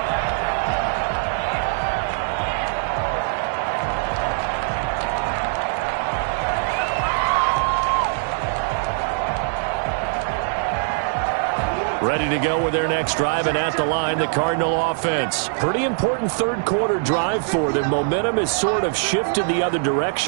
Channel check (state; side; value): silent; left; digital silence